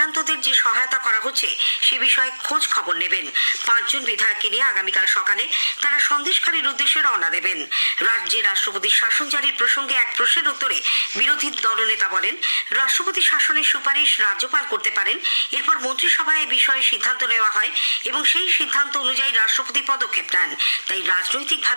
যে সহায়তা করা হচ্ছে সে বিষয়ে খোঁজ খবর নেবেন। 5 জন বিধায়ককে নিয়ে আগামীকাল সকালে তারা সন্দেশখালীর উদ্দেশ্যে রওনা দেবেন। রাজ্যে রাষ্ট্রপতির শাসন জারির প্রসঙ্গে এক প্রশ্নের উত্তরে বিরোধী দলনেতা বলেন রাষ্ট্রপতি শাসনের সুপারিশ রাজ্যপাল করতে পারেন। এরপর মন্ত্রিসভায় এ বিষয়ে সিদ্ধান্ত নেওয়া হয় এবং সেই সিদ্ধান্ত অনুযায়ী রাষ্ট্রপতি পদক্ষেপ নেন। তাই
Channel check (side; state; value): both; inverted; correlation -1.00